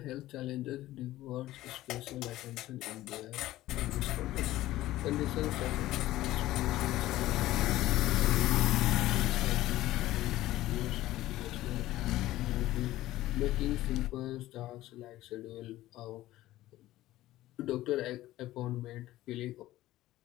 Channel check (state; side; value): quieter; right; 15.7 dB